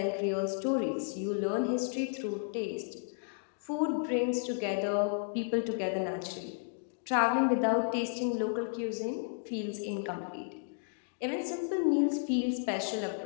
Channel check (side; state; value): right; silent; digital silence